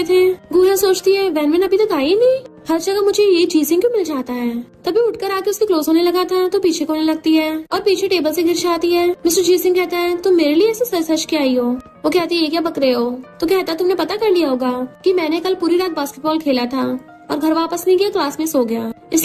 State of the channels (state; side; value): identical; both; correlation 1.00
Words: थे। गुहन सोचती है वैनवन अभी तक आई नहीं, हर जगह मुझे ये जीजिंग क्यों मिल जाता है। तभी उठकर आके उसके क्लोज होने लगा था तो पीछे होने लगती है और पीछे टेबल से गिर जाती है। मिस्टर जीजिंग कहता है तुम मेरे लिए ऐसे सच सच के आई हो। वो कहती है ये क्या बक रहे हो। तो कहता है तुमने पता कर लिया होगा कि मैंने कल पूरी रात बास्केटबॉल खेला था और घर वापस नहीं गया, क्लास में सो गया,